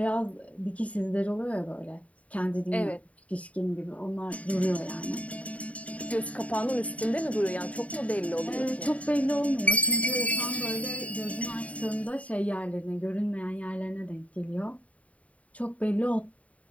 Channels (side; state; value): right; late; 0.067 ms